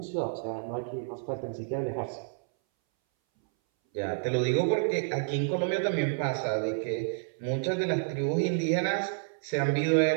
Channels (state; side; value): silent; left; 58 dB below the other